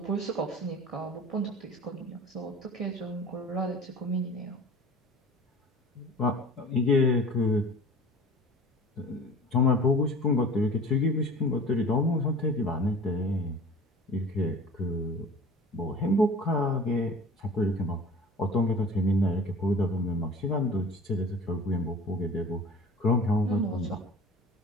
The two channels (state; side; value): normal; both; correlation 0.41